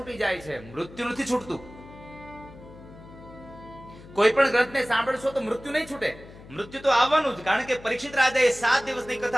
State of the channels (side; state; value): left; noise; hum, 19 dB below the sound